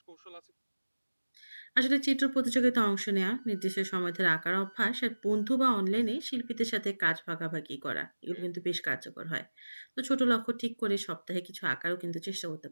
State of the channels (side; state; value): both; inverted; correlation -1.00